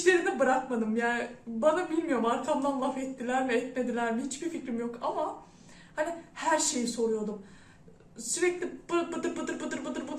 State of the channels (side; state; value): both; identical; correlation 1.00